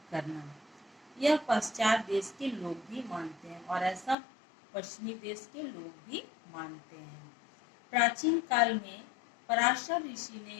करना। यह पश्चात देश के लोग भी मानते हैं और ऐसा पश्चिमी देश के लोग भी मानते हैं। प्राचीन काल में पराशर ऋषि ने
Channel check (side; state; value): right; drops out; at 4.2 s